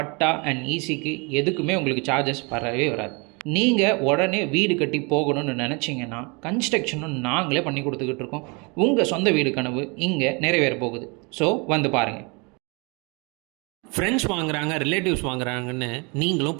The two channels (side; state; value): left; quieter; 30.7 dB